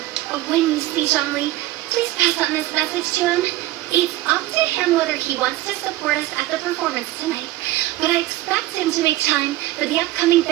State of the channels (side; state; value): left; quieter; 16.5 dB